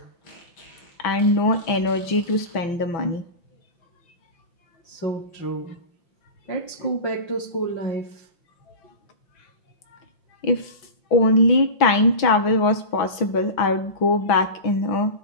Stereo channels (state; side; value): late; right; 6.1 ms